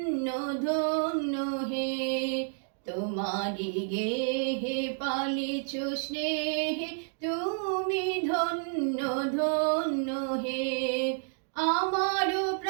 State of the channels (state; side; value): silent; left; 56 dB below the other